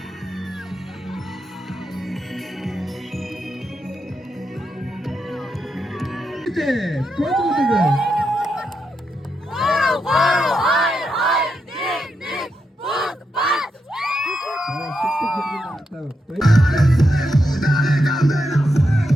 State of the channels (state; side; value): normal; both; correlation 0.84